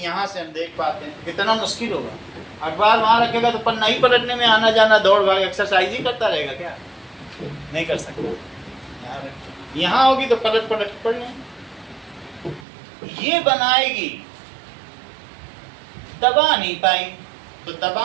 यहाँ से हम देख पाते हैं, कितना मुश्किल होगा। अखबार वहाँ रखेगा तो पन्ना ही पलटने में आना जाना दौड़ भाग एक्सरसाइज ही करता रहेगा क्या? नहीं कर सकता। यहाँ होगी तो पलट पलट पढ़ लें। ये बनाएगी, दबा नहीं पाई, तो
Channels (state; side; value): drops out; left; at 12.7 s